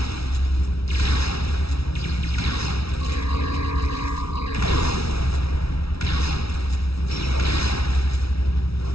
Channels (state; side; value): late; right; 0.76 ms